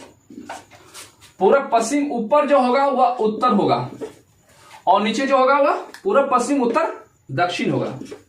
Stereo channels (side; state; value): both; identical; correlation 1.00